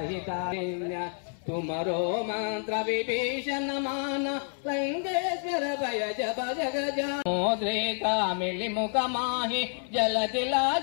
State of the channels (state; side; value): silent; right; 59 dB below the other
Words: तुमरो मंत्र विभीषण मान लंकेश्वर भय जप जग मोद्रेका मिली मुख माही जल दिला